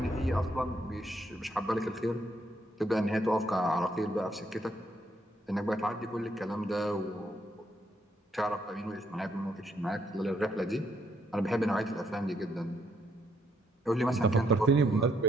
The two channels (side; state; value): both; normal; correlation 0.74